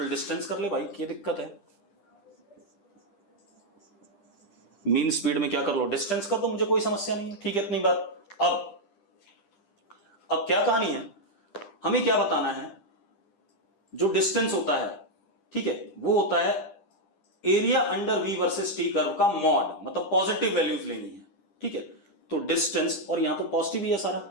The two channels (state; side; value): late; right; 10 ms